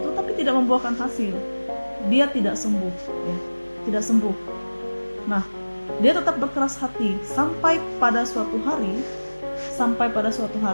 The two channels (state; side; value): inverted; both; correlation -1.00